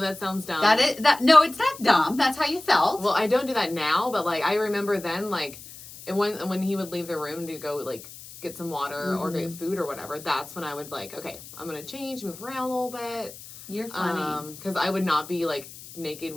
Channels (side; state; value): left; noise; hiss, 16 dB below the sound